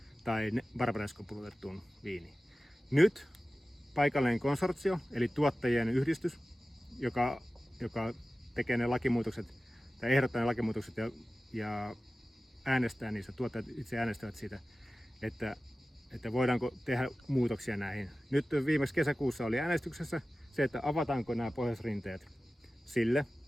tai Barbarescon pulutettuun viiniin. Nyt paikallinen konsortio, eli tuottajien yhdistys, joka tekee ne lakimuutokset tai ehdottaa ne lakimuutokset ja äänestää niissä, tuottajat itse äänestävät siitä, että voidaanko tehdä muutoksia näihin. Nyt viimeksi kesäkuussa oli äänestyksessä se, että avataanko nämä pohjoisrinteet sille,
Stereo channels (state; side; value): normal; both; correlation 0.96